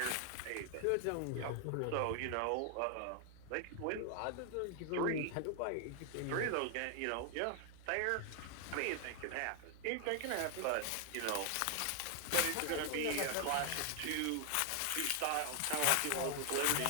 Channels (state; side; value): different; both; correlation 0.00